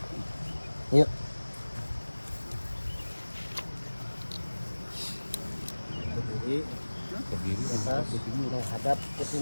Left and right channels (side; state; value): both; inverted; correlation -1.00